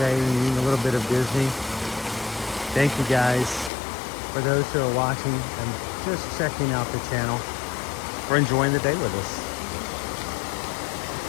and eating a little bit of Disney. Thank you guys for those who are watching and just checking out the channel, for enjoying the day with us.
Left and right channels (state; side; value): drops out; right; at 3.7 s